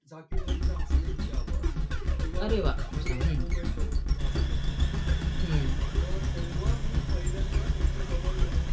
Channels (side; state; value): both; identical; correlation 1.00